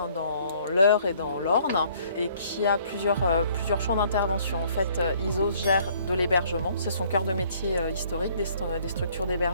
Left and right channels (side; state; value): both; inverted; correlation -0.61